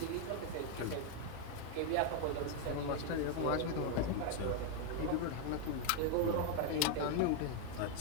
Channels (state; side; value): different; both; correlation 0.01